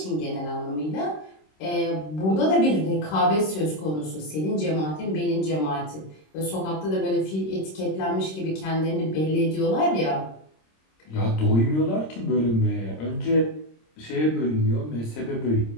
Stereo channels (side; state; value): right; late; 26 ms